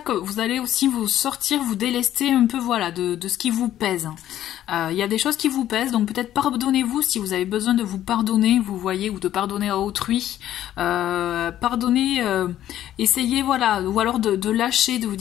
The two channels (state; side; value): quieter; right; 12.2 dB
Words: que vous allez aussi vous délester un peu, voilà, de ce qui vous pèse. Il y a des choses qui vous pèsent, donc peut-être pardonnez-vous si vous avez besoin de vous pardonner, vous voyez, ou de pardonner à autrui. Pardonnez, essayez, voilà, ou alors de lâcher, de vous